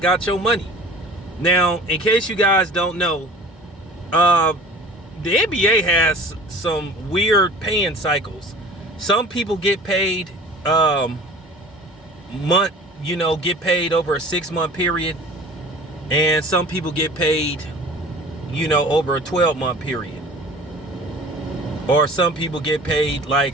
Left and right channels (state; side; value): normal; both; correlation 0.44